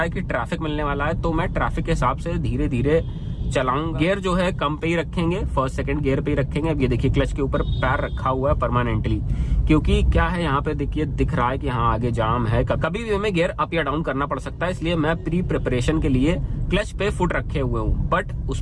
है कि ट्रैफिक मिलने वाला है, तो मैं ट्रैफिक के हिसाब से धीरे धीरे चलाऊंगा। गियर जो है कम पे ही रखेंगे, फर्स्ट सेकंड गियर पे ही रखेंगे। अब ये देखिए क्लच के ऊपर पैर रखा हुआ है परमानेंटली, क्योंकि क्या है यहाँ पे देखिए दिख रहा है कि हाँ आगे जाम है, कभी भी हमें गियर अप या डाउन करना पड़ सकता है, इसलिए मैं प्री प्रिपरेशन के लिए क्लच पे फुट रखे हुए हूँ, बट उस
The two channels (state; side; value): identical; both; correlation 1.00